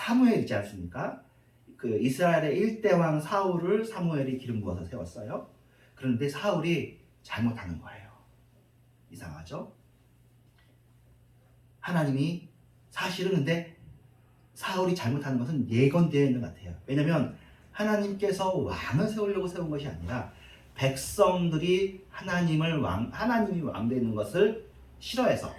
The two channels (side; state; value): both; identical; correlation 1.00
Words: 있지 않습니까? 그 이스라엘의 1대 왕 사울을 사무엘이 기름 부어서 세웠어요. 그런데 사울이 잘못하는 거예요. 이상하죠? 하나님이 사실은 근데 사울이 잘못하는 것은 예건되어 있는 것 같아요. 왜냐하면 하나님께서 왕을 세우려고 세운 것이 아니라 백성들이 하나님이 왕 되는 것을 싫어해서